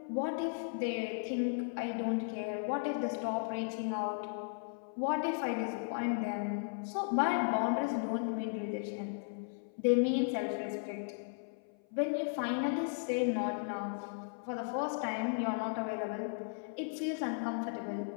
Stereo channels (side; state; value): right; silent; 54 dB below the other